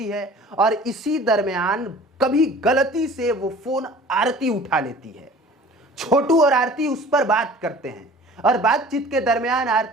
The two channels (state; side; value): normal; both; correlation 0.46